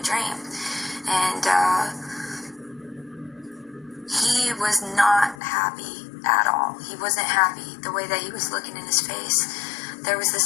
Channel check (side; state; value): right; drops out; at 5.4 s